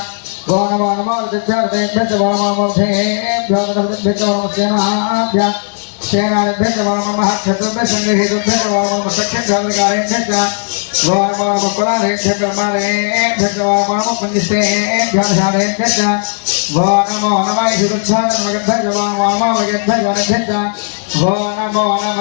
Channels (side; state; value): right; silent; digital silence